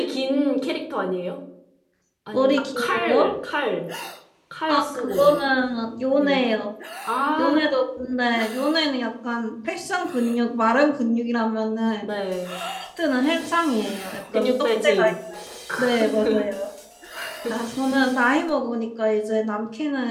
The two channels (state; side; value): identical; both; correlation 1.00